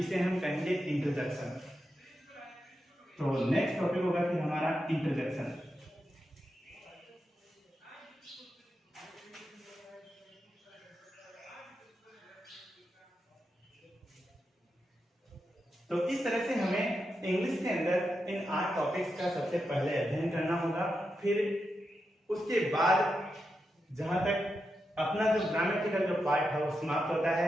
हम कहेंगे इंटरजेक्शन। तो नेक्स्ट टॉपिक होगा फिर हमारा इंटरजेक्शन। तो इस तरह से हमें इंग्लिश के अंदर इन 8 टॉपिक्स का सबसे पहले अध्ययन करना होगा। फिर उसके बाद जहां तक अपना जो ग्रामेटिकल जो पार्ट है वो समाप्त होता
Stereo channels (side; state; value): both; normal; correlation 0.87